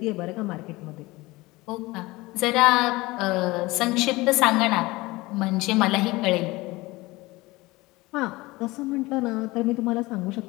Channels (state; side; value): quieter; right; 21.2 dB